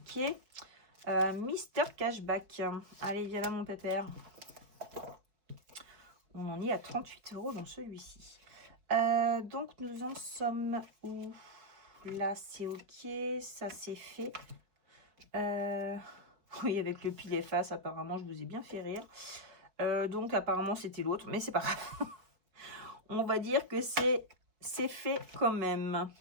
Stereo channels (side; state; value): left; late; 5.1 ms